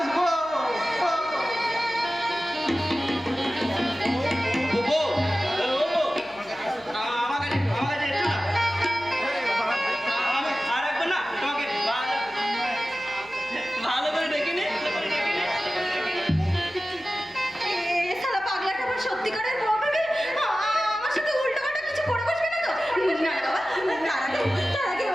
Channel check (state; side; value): noise; left; hum, 29 dB below the sound